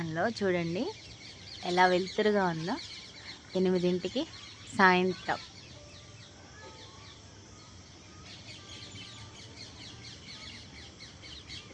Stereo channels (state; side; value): identical; both; correlation 1.00